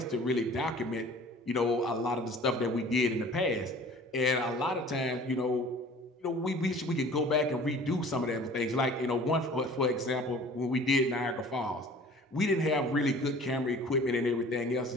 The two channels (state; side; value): normal; both; correlation 0.47